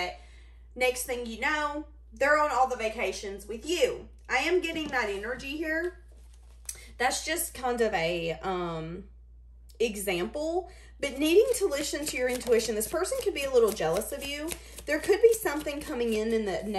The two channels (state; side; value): identical; both; correlation 1.00